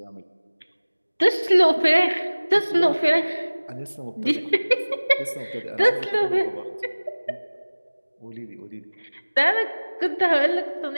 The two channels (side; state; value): both; inverted; correlation -1.00